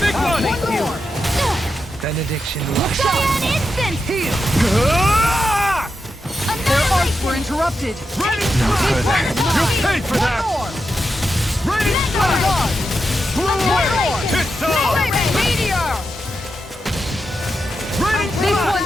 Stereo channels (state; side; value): normal; both; correlation 0.87